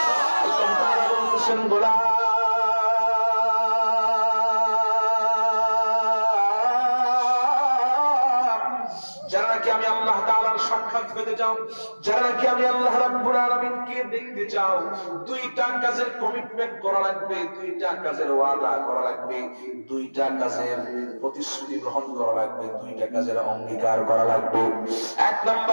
আল্লাহ তাআলা বলছেন গোলাম যারা নাকি আমি আল্লাহ তাআলার সাক্ষাৎ পেতে চাও, যারা নাকি আমি আল্লাহ রাব্বুল আলামিনকে দেখতে চাও, দুইটা কাজের কমিটমেন্ট করা লাগবে, দুইটা কাজের ওয়াদা করা লাগবে, দুইটা কাজের প্রতিশ্রুতি গ্রহণ করা লাগবে, দুইটা কাজের অঙ্গীকার করা লাগবে। এক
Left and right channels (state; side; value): inverted; both; correlation -1.00